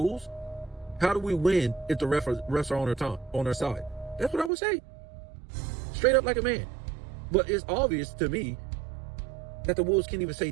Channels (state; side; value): drops out; left; at 4.5 s